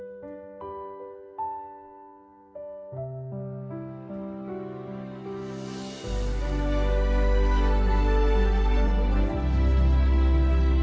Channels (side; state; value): both; identical; correlation 1.00